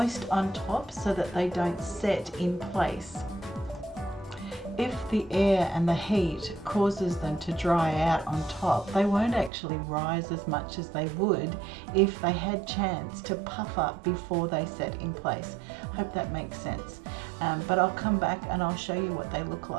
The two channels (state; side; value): drops out; left; at 9.5 s